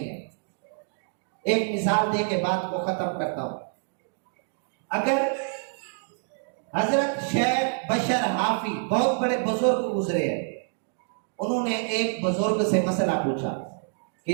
ہے۔ ایک مثال دے کے بات کو ختم کرتا ہوں۔ اگر حضرت شیخ بشر حافی بہت بڑے بزرگ گزرے ہیں، انہوں نے ایک بزرگ سے مسئلہ پوچھا کہ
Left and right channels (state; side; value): silent; left; digital silence